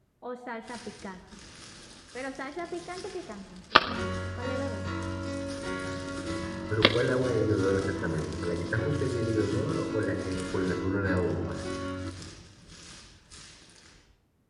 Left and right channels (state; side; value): identical; both; correlation 1.00